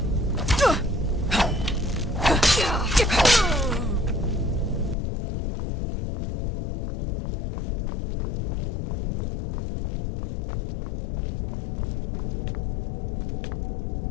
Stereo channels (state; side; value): drops out; right; at 5.0 s